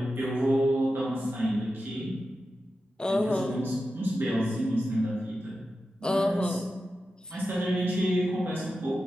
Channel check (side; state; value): both; normal; correlation 0.91